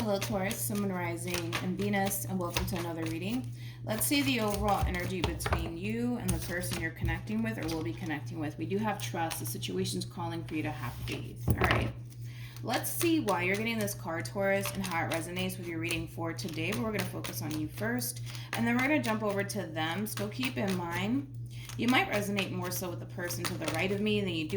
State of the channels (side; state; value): both; identical; correlation 1.00